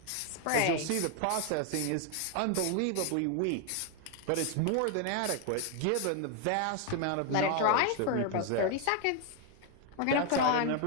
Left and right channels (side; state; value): both; different; correlation 0.00